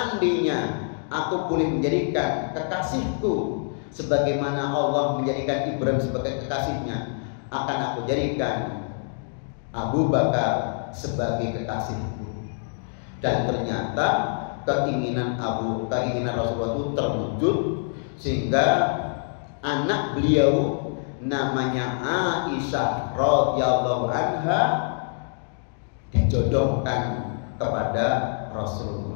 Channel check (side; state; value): right; silent; digital silence